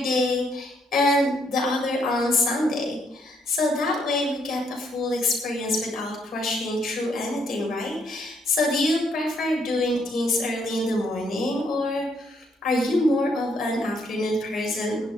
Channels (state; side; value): normal; both; correlation 0.72